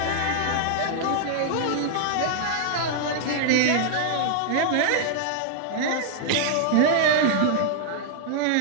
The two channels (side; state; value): both; different; correlation -0.01